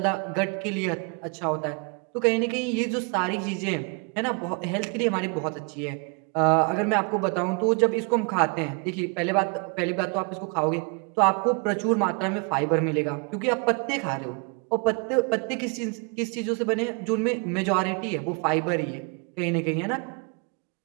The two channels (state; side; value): quieter; left; 34.4 dB